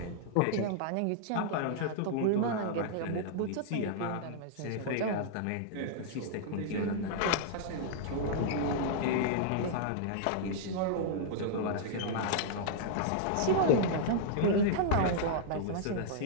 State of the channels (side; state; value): both; different; correlation -0.02